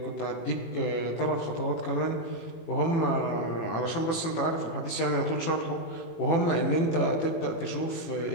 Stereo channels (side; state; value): right; late; 18 ms